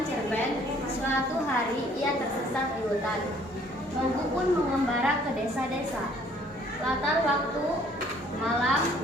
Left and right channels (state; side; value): normal; both; correlation 0.59